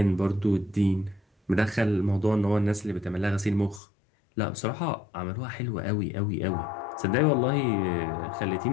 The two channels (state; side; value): drops out; right; at 3.8 s